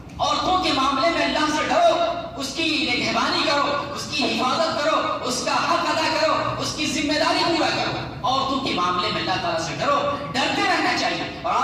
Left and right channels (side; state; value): both; identical; correlation 1.00